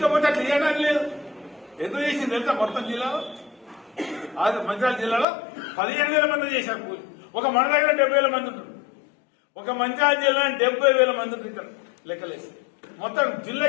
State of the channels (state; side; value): drops out; right; at 5.2 s